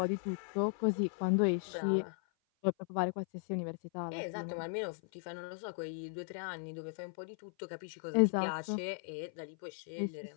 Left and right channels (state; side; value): silent; right; 53 dB below the other